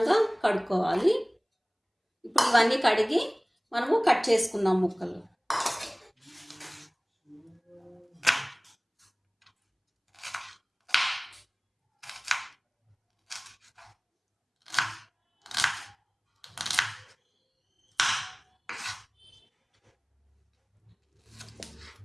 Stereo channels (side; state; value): both; identical; correlation 1.00